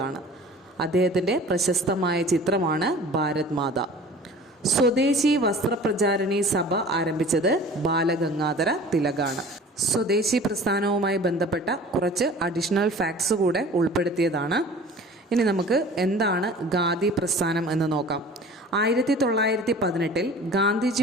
അദ്ദേഹത്തിൻ്റെ പ്രശസ്തമായ ചിത്രമാണ് ഭാരത് മാത. സ്വദേശി വസ്ത്രപ്രചാരണി സഭ ആരംഭിച്ചത് ബാലഗംഗാധര തിലകാണ്. സ്വദേശി പ്രസ്ഥാനവുമായി ബന്ധപ്പെട്ട കുറച്ച് അഡീഷണൽ ഫാക്ട്സ് കൂടെ ഉൾപ്പെടുത്തിയതാണ്. ഇനി നമുക്ക് എന്താണ് ഖാദി പ്രസ്ഥാനം എന്ന് നോക്കാം. 1918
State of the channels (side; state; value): both; normal; correlation 0.44